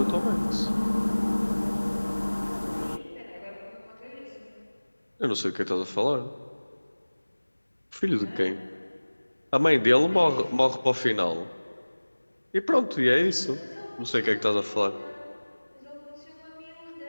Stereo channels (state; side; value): inverted; both; correlation -1.00